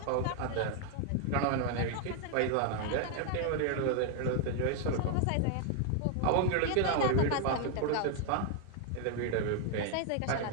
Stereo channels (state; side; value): different; both; correlation 0.00